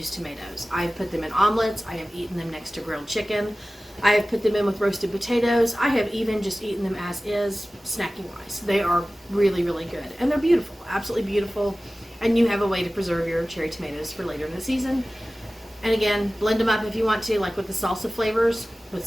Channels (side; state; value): both; normal; correlation 0.97